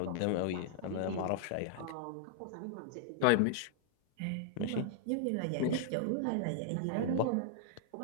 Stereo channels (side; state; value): both; different; correlation -0.01